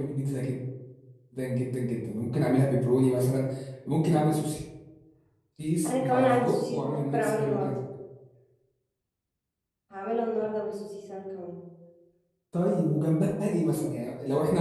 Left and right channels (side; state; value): both; identical; correlation 1.00